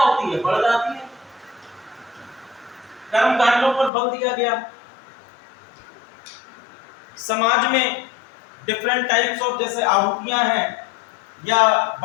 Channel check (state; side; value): drops out; right; at 3.9 s